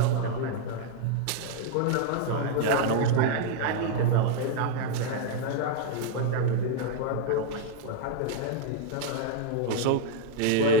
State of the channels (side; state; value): both; different; correlation 0.00